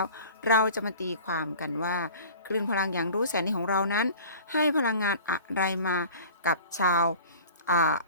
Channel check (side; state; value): both; inverted; correlation -0.42